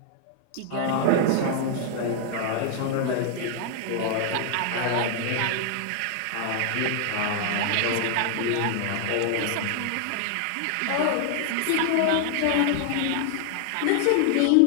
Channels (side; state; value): both; different; correlation 0.00